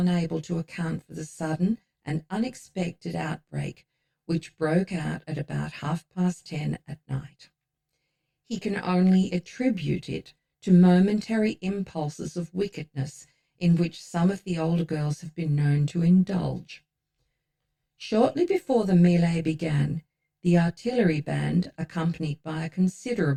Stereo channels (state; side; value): identical; both; correlation 1.00